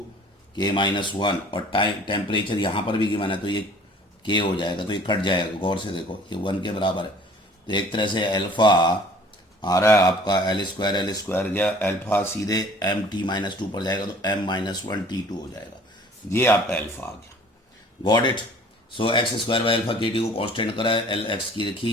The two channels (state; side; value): normal; both; correlation 0.51